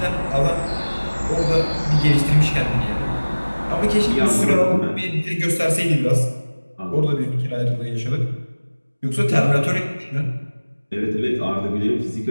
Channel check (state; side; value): inverted; both; correlation -1.00